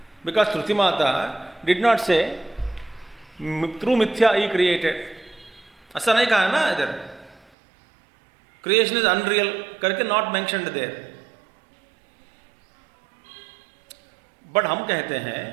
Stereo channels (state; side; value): drops out; left; at 7.5 s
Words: Because Shruti mata did not से थ्रू मिथ्या ही क्रिएटेड, ऐसा नहीं कहा ना इधर। क्रिएशन इज अनरियल करके नॉट मेंशन्ड देयर। बट हम कहते हैं